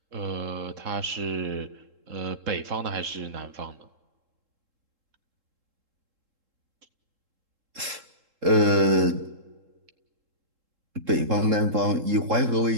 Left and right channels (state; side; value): late; left; 3.7 ms